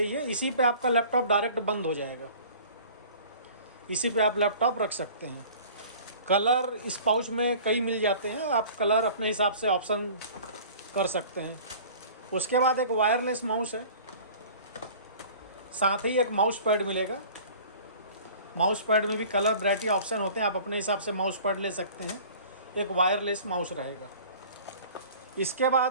ये, इसी पे आपका लैपटॉप डायरेक्ट बंद हो जाएगा। इसी पे आप लैपटॉप रख सकते हैं। कलर इस पाउच में कई मिल जाते हैं, आप कलर अपने हिसाब से ऑप्शन कर सकते हैं। उसके बाद एक वायरलेस माउस है, साथ ही एक माउस पैड मिलेगा। माउस पैड में भी कलर वैरायटी ऑप्शन होते हैं, आप अपने हिसाब से माउस पैड ले सकते हैं। एक वायरलेस माउस रहेगा। इसके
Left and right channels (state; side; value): inverted; both; correlation -0.45